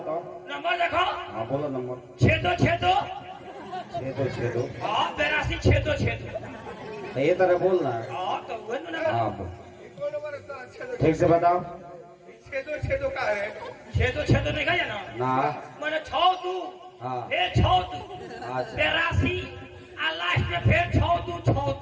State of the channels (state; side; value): identical; both; correlation 1.00